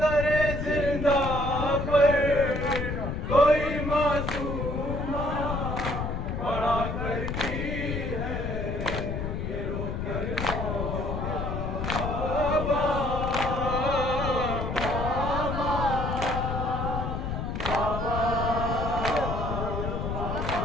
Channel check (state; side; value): noise; left; rumble, 3 dB below the sound